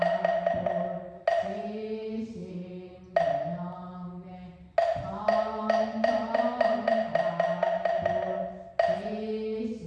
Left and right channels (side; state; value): both; identical; correlation 1.00